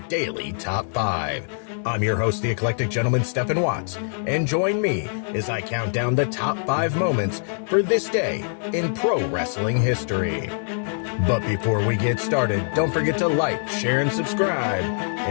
Daily Top 5. I'm your host, the eclectic gentleman, Stephen Watts, and join me as I count down the top 5 moments for this day in pro wrestling history. But before we get started, don't forget to like, share, and subscribe.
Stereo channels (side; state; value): right; silent; digital silence